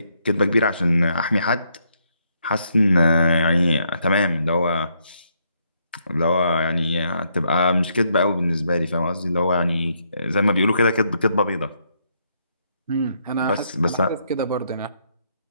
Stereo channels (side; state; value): both; inverted; correlation -0.75